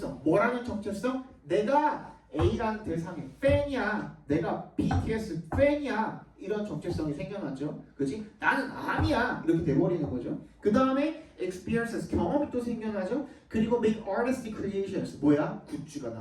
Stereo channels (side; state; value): both; identical; correlation 1.00